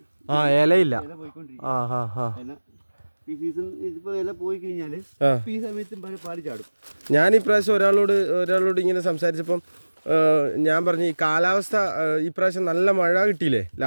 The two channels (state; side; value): inverted; both; correlation -1.00